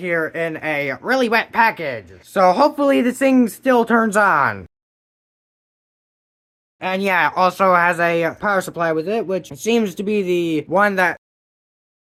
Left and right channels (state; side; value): identical; both; correlation 1.00